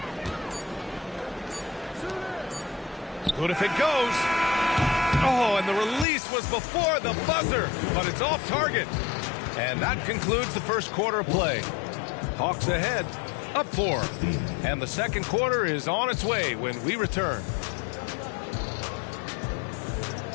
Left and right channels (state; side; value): drops out; right; at 6.1 s